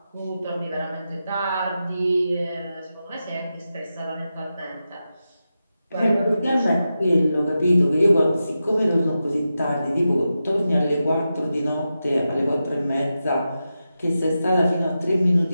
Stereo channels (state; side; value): inverted; both; correlation -0.90